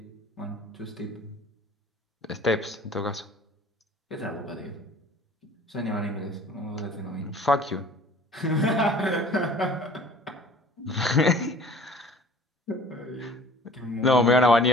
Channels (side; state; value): both; normal; correlation 0.48